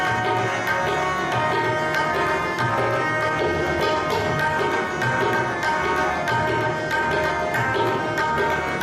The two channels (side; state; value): both; identical; correlation 1.00